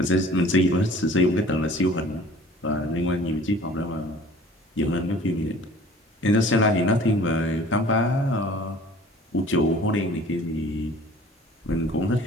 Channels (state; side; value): normal; both; correlation 0.48